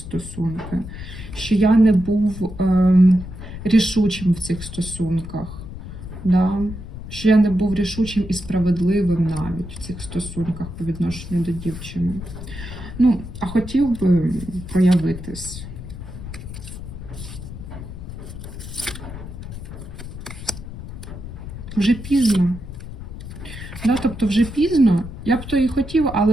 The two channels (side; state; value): left; noise; rumble, 11 dB below the sound